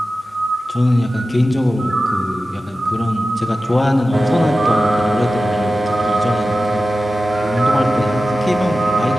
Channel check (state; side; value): normal; both; correlation 0.94